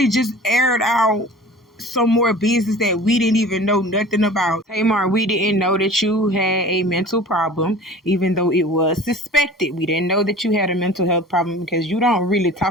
just aired out some more business that we didn't even know nothing about. Tamar, we didn't know that you had a mental problem, even though it was suspected. We didn't know that you had a mental health problem because you don't really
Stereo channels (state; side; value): normal; both; correlation 0.42